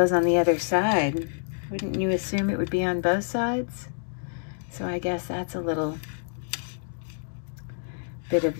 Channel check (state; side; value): silent; right; digital silence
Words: on the other side. Wouldn't you assume it would be on both sides? So I guess that's a little bit